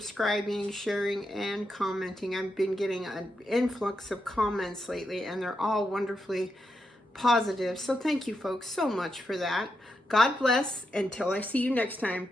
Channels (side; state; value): both; normal; correlation 0.84